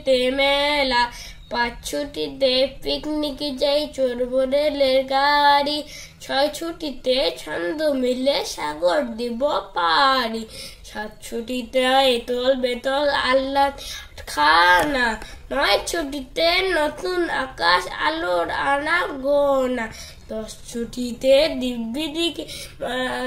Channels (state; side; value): identical; both; correlation 1.00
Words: মেলা, 5 ছুটিতে পিকনিক যাই, চড়বো রেলের গাড়ি, 6 ছুটিতে ছন্দ মিলে সাগর দিব পারি, 7 ছুটিতে এতল বেতল আহ্লাদ খানা, 9 ছুটিতে নতুন আকাশ আলোর আনা গোনা, 10 ছুটিতে দিব্যি দিকে